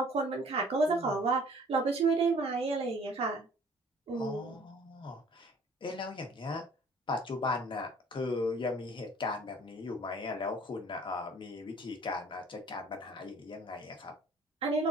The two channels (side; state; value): both; normal; correlation 0.53